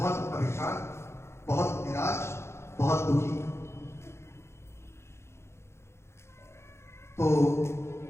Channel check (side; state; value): right; late; 0.13 ms